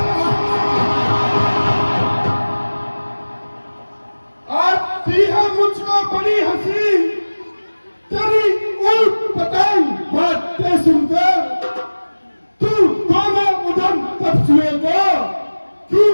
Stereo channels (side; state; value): both; inverted; correlation -1.00